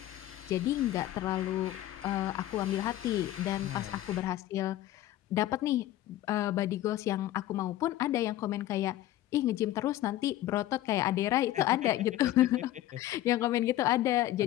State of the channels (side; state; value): right; quieter; 14.2 dB